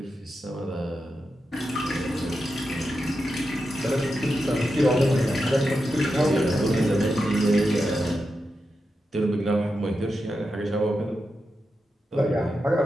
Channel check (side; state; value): both; normal; correlation 0.88